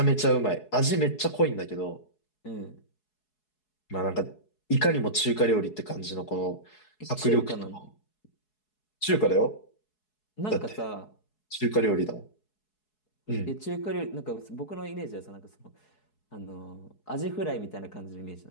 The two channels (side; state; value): right; late; 4.7 ms